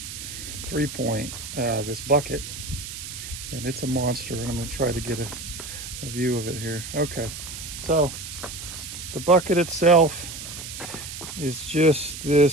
3-point, this bucket, and it's a monster, and I'm going to try to get a view of it here. Okay, so the bucket itself is just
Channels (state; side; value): noise; right; hiss, 9 dB below the sound